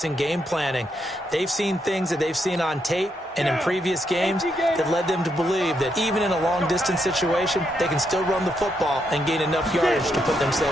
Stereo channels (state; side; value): normal; both; correlation 0.79